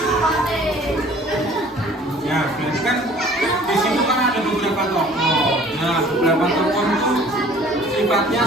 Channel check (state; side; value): normal; both; correlation 0.51